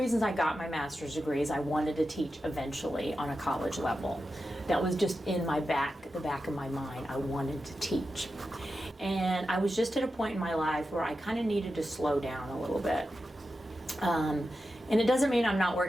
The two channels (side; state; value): both; normal; correlation 0.90